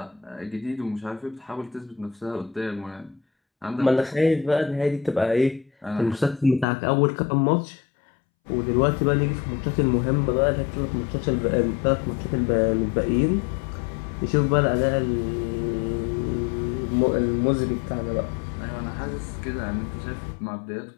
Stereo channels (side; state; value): right; drops out; at 6.7 s